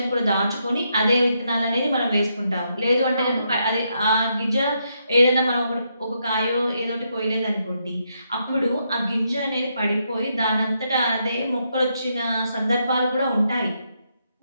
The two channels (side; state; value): both; inverted; correlation -0.79